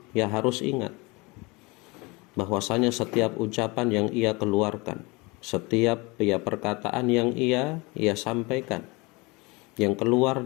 ya harus ingat bahwasanya setiap ucapan yang ia keluarkan, setiap ya perkataan yang ia sampaikan, yang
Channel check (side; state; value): right; quieter; 25.6 dB